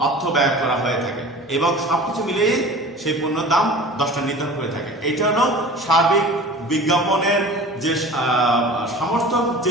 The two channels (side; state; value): both; normal; correlation 0.39